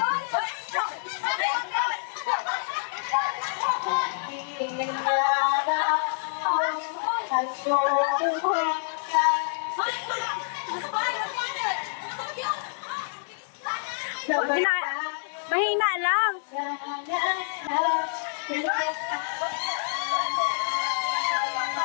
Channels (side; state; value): right; silent; digital silence